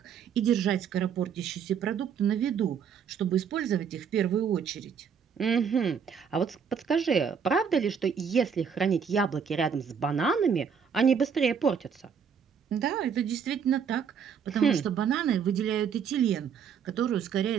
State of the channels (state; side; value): quieter; left; 7.0 dB